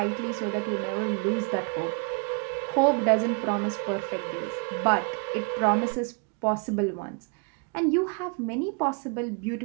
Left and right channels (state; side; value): quieter; left; 35.1 dB